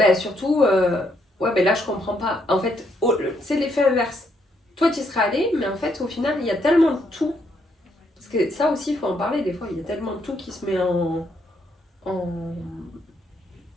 surtout, ouais, ben là je comprends pas. En fait, c'est l'effet inverse. Toi tu y serais allé, mais en fait au final il y a tellement de tout. Parce que ça aussi il faut en parler des fois, il y a tellement de tout qui se met en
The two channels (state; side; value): normal; both; correlation 0.74